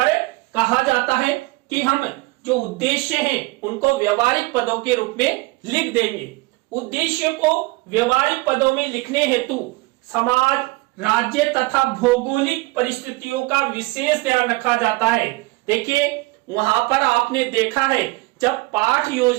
कहा जाता है कि हम जो उद्देश्य हैं उनको व्यवहारिक पदों के रूप में लिख देंगे। उद्देश्य को व्यवहारिक पदों में लिखने हेतु समाज, राज्य तथा भौगोलिक परिस्थितियों का विशेष ध्यान रखा जाता है। देखिए वहां पर आपने देखा है जब पाठ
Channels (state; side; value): quieter; left; 22.9 dB